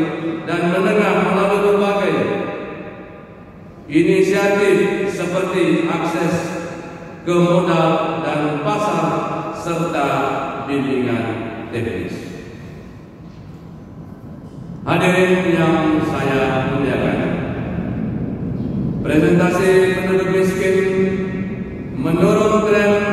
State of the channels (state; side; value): identical; both; correlation 1.00